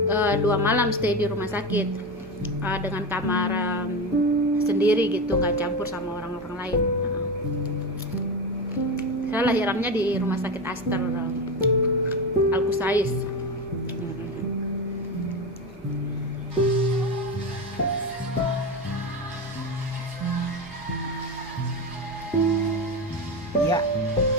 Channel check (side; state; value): right; noise; hum, 23 dB below the sound